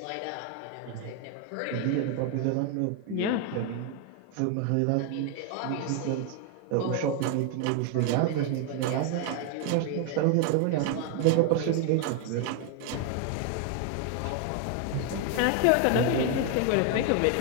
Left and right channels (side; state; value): both; different; correlation 0.01